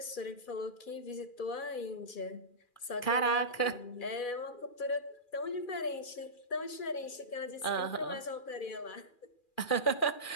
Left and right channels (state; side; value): late; right; 2.4 ms